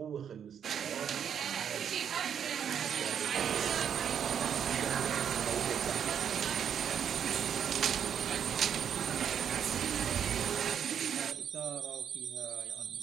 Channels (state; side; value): quieter; left; 8.3 dB